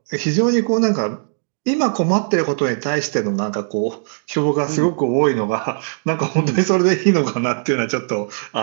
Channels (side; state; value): left; silent; digital silence